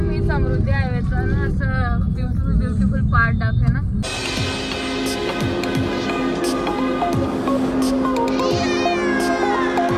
समृद्धी हायवेचा ना असं ब्युटिफुल पार्ट दाखवे ना.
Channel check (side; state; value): both; identical; correlation 1.00